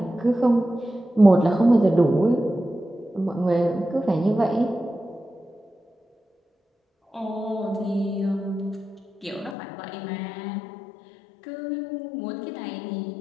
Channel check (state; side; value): drops out; right; at 9.6 s